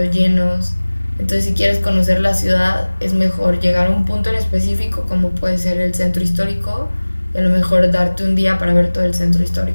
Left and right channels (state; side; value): inverted; both; correlation -1.00